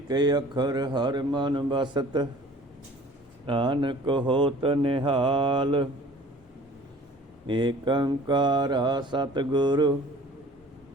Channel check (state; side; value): normal; both; correlation 0.48